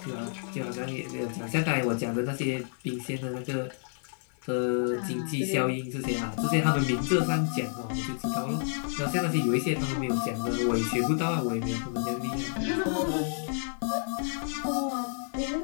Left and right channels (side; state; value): right; silent; 58 dB below the other